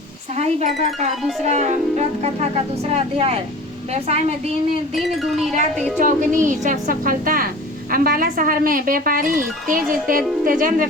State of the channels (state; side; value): normal; both; correlation 0.39